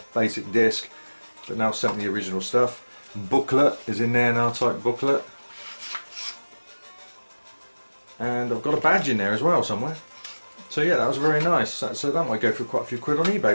basic disc, but now sent me the original stuff. Booklet is in there, an R-Type booklet. And I've got a badge in there as well somewhere. So yeah, that was very nice. So that might go for quite a few quid on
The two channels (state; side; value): inverted; both; correlation -1.00